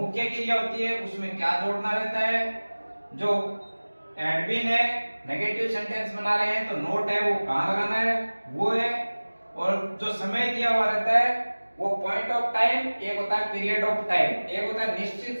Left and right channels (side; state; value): both; inverted; correlation -1.00